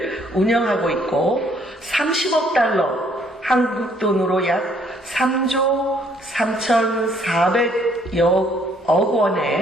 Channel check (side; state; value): both; normal; correlation 0.65